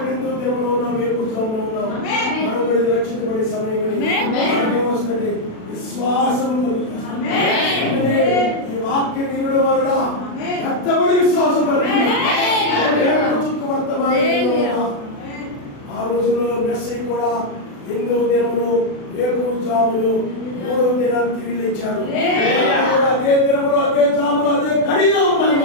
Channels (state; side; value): late; right; 36 ms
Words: హిందూ దినములు ఉన్నాం, వేకువజామున ఉన్నాం. మనం కూడా రక్షించబడే సమయమని ఏమొస్తుంది? విశ్వాసం కలుగుతుంది. ఈ వాక్య వినడం వలన కష్టపడి విశ్వాసం ఆ రోజుల్లో మెస్సీ కూడా హిందూ దినములు వేకువజాములు 3వ దినాలు తిరిగి లేచాడు. అదే దినములు, అదే జాములు, అదే గడిలో ఉన్నాయి.